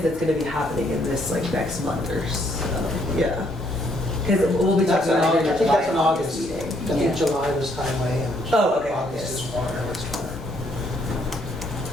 it's going to be happening in this like next month or so. Yeah. Because we'll be That's talking an about it August, I in think that's an July August. meeting. I think July was highway and Oh, okay. August is Yes. water.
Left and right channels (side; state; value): both; normal; correlation 0.70